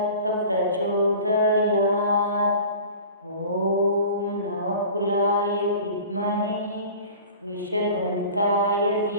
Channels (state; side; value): inverted; both; correlation -0.41